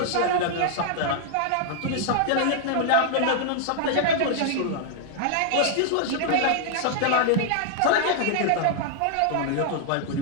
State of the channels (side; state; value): both; different; correlation -0.01